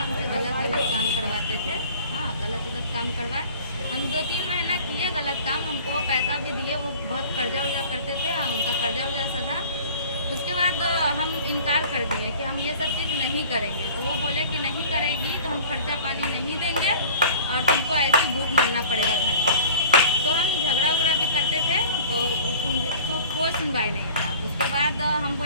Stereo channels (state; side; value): inverted; both; correlation -0.44